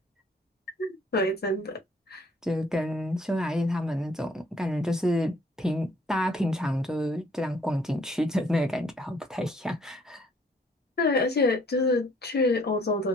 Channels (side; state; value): both; normal; correlation 0.61